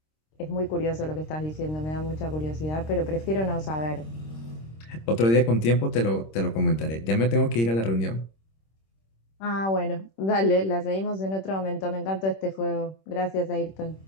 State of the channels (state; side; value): late; right; 26 ms